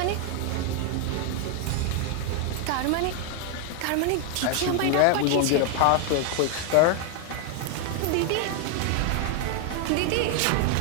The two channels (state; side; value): different; both; correlation 0.00